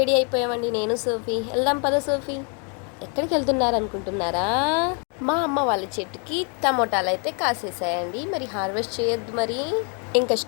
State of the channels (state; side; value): quieter; right; 38.2 dB